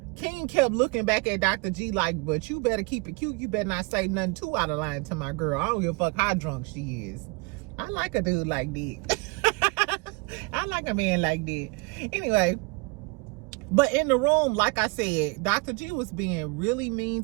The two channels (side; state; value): left; quieter; 27.9 dB